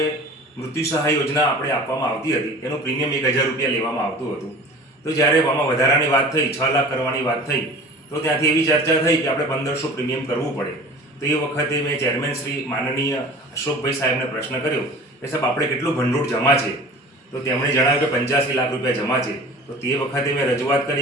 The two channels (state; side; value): normal; both; correlation 0.42